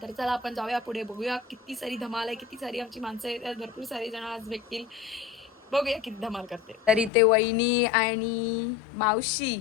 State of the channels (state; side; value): drops out; right; at 7.1 s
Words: तर चला आपण जाऊया पुढे, बघूया किती सारी धमाल आहे, किती सारी आमची माणसं आहेत, भरपूर सारे जण आज भेटतील. बघूया किती धमाल करते. तर इथे वहिनी आणि मावशी